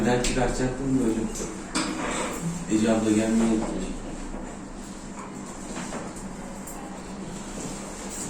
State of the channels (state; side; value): identical; both; correlation 1.00